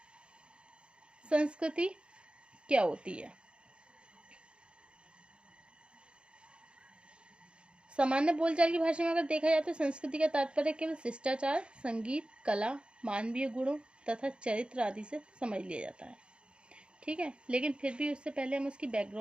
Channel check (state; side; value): late; left; 0.056 ms